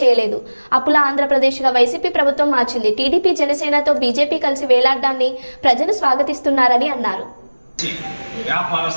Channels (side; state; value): both; inverted; correlation -1.00